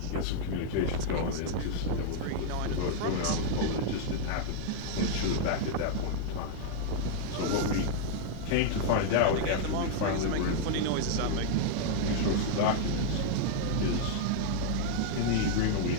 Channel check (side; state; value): both; different; correlation -0.01